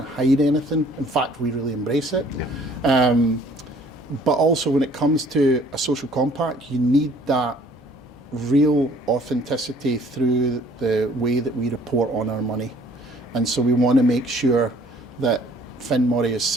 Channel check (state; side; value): normal; both; correlation 0.57